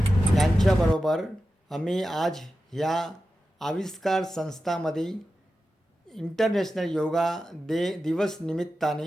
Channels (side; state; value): both; normal; correlation 0.92